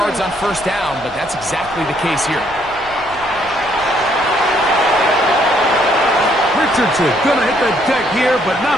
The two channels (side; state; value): right; noise; rumble, 21 dB below the sound